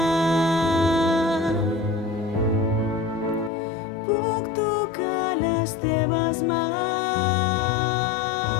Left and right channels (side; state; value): right; drops out; at 3.5 s